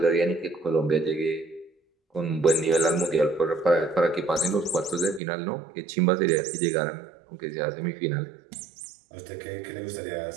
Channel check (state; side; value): drops out; left; at 5.2 s